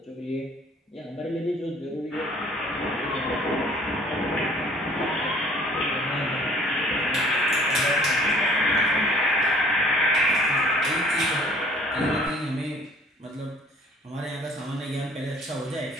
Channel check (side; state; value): both; normal; correlation 0.54